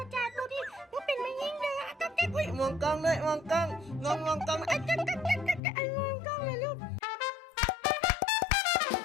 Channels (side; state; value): right; drops out; at 5.6 s